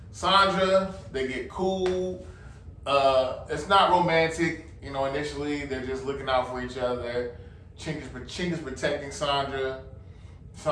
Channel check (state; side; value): identical; both; correlation 1.00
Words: Sandra, they get cool. It's not romantic, you know, initially, they're just looking out for each other. Chink is protecting Sandra.